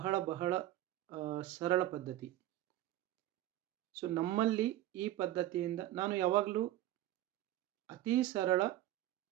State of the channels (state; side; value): quieter; left; 14.3 dB